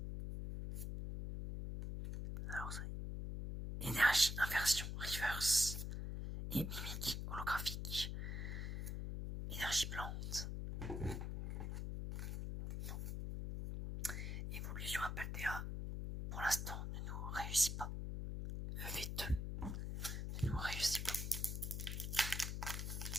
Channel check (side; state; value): left; noise; hum, 3 dB below the sound